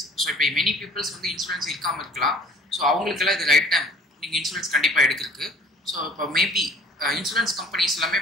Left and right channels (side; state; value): both; normal; correlation 0.51